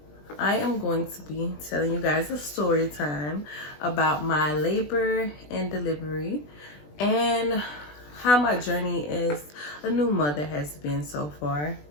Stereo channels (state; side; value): late; right; 20 ms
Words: I am going to be telling you guys a story time about my labor and delivery and how my journey as a new mother has been so far.